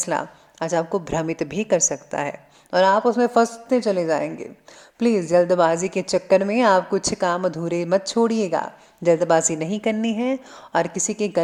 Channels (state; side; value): identical; both; correlation 1.00